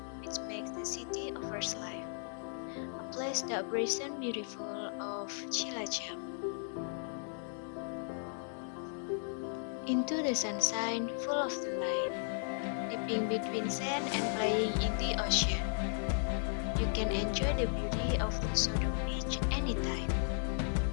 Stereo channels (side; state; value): right; silent; digital silence